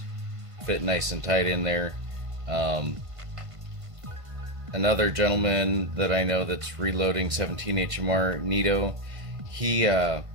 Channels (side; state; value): left; late; 1.5 ms